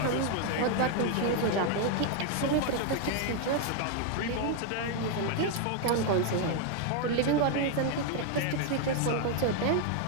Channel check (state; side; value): different; both; correlation 0.01